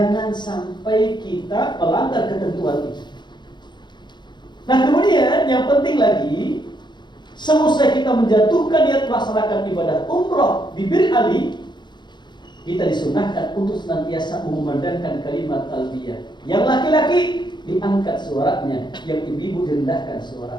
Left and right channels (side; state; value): right; late; 0.22 ms